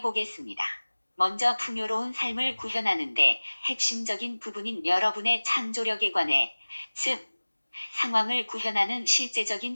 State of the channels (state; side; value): inverted; both; correlation -1.00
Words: 보겠습니다. 먼저 풍요로운 삶을 구현하는데 핵심적인 부분인 여러분의 창조력에 관해, 즉, 상황을 구현하는 실제적인